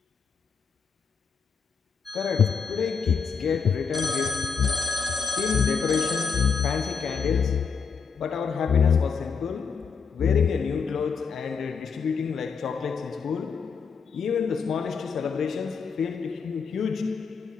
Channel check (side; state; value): right; quieter; 5.9 dB